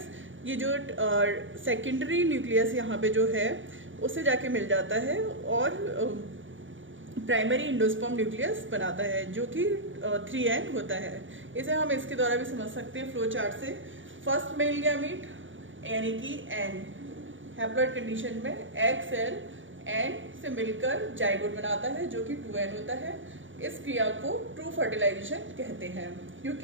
ये जो सेकेंडरी न्यूक्लियस यहाँ पे जो है उससे जाके मिल जाता है और प्राइमरी इंडोस्पर्म न्यूक्लियस बनाता है जो कि 3N होता है। इसे हम इसके द्वारा भी समझ सकते हैं फ्लो चार्ट से। फर्स्ट मेल गैमीट यानी कि N हैप्लॉइड कंडीशन में एग सेल N से मिलकर जाइगोट बनाता है जो कि 2N होता है। इस क्रिया को ट्रू फर्टिलाइजेशन कहते हैं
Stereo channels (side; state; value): left; late; 0.56 ms